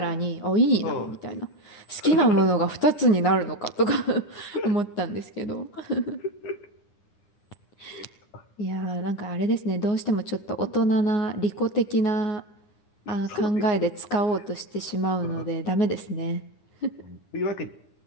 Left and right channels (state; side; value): late; right; 9.7 ms